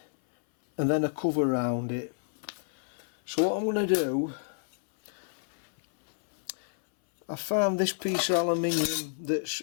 and then a cover around it. So what I'm going to do, I found this piece of aluminium that's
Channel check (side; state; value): right; silent; 58 dB below the other